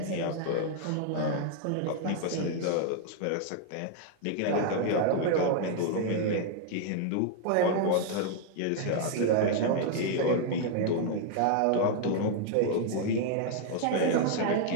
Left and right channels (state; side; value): different; both; correlation 0.00